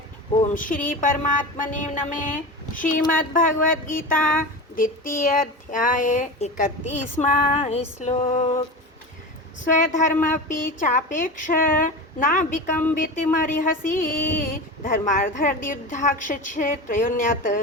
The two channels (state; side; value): normal; both; correlation 0.27